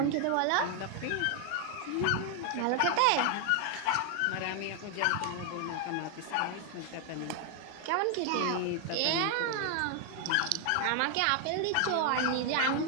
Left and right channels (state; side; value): different; both; correlation 0.00